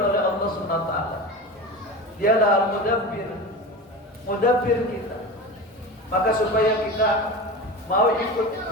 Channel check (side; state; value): both; normal; correlation 0.28